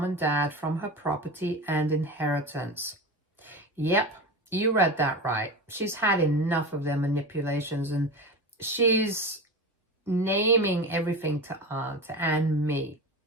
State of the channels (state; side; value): normal; both; correlation 0.26